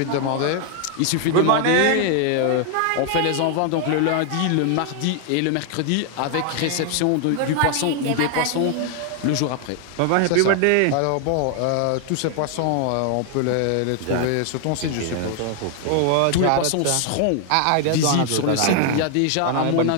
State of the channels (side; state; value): both; different; correlation 0.00